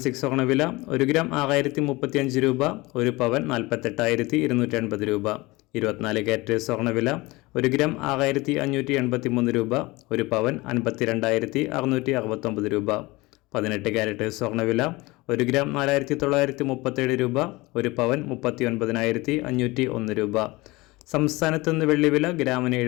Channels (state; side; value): quieter; right; 22.1 dB